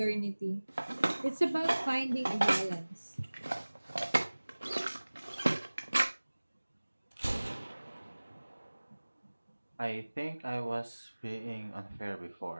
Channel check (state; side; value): inverted; both; correlation -1.00